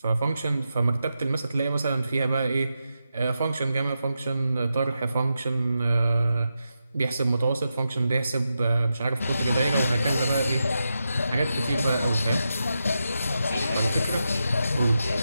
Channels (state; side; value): inverted; both; correlation -0.88